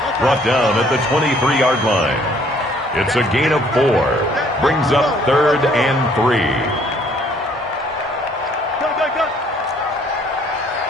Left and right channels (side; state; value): both; normal; correlation 0.61